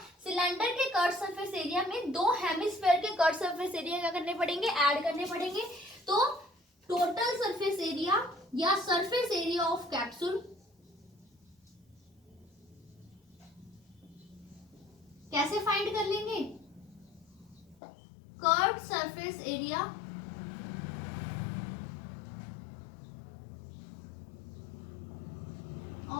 सिलेंडर के कर्व सरफेस एरिया में दो हेमिस्फीयर के कर्व सरफेस एरिया क्या करने पड़ेंगे, ऐड करने पड़ेंगे। तो टोटल सरफेस एरिया या सरफेस एरिया ऑफ कैप्सूल कैसे फाइंड कर लेंगे, curve surface area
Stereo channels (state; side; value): drops out; right; at 17.8 s